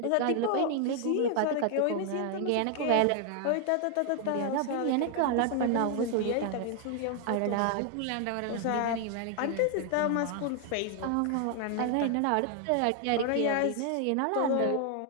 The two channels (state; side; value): different; both; correlation 0.00